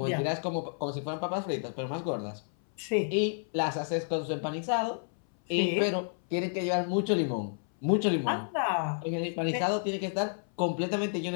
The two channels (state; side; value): silent; right; 57 dB below the other